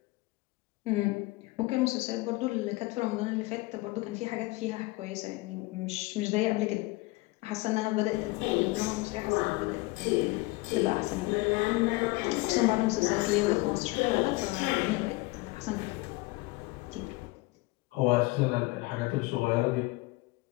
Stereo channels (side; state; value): right; quieter; 22.4 dB